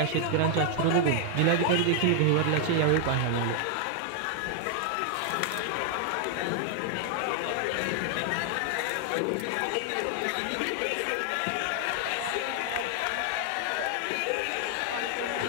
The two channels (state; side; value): different; both; correlation 0.00